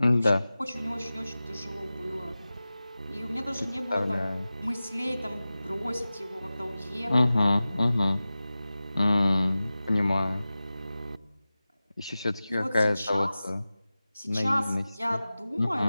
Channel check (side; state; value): both; inverted; correlation -0.96